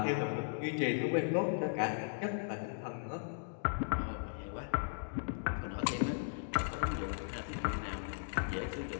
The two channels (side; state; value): right; silent; digital silence